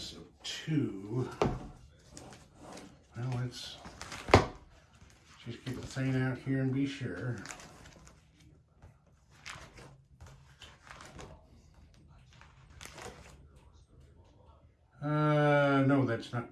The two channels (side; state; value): both; identical; correlation 1.00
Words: of 2. Well, let's just get the thing out here and be sure. No, that's not